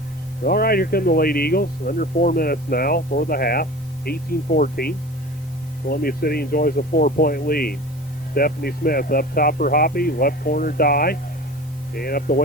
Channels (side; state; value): both; normal; correlation 0.37